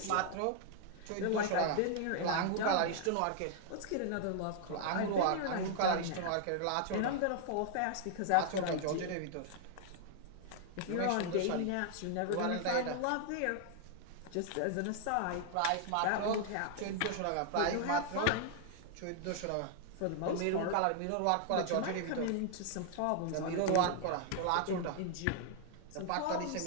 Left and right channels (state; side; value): different; both; correlation -0.01